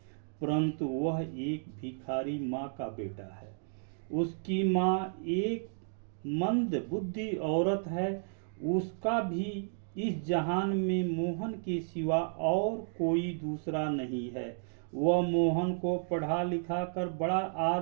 परंतु वह एक भिखारी माँ का बेटा है। उसकी माँ एक मंद बुद्धि औरत है। उसका भी इस जहान में मोहन के सिवा और कोई दूसरा नहीं है। वह मोहन को पढ़ा लिखा कर बड़ा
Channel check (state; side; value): silent; left; digital silence